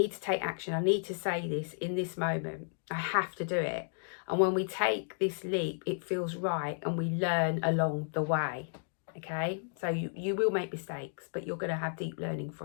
to take action. I need to say this in this moment. I have to do it. And when we take this leap, it feels right, and we learn along the way. Okay, so you will make mistakes, but you're going to have deep learning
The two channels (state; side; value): silent; right; digital silence